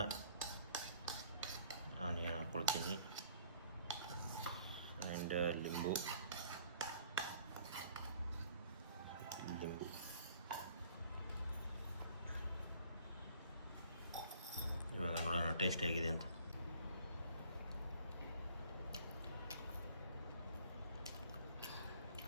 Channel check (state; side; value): inverted; both; correlation -0.56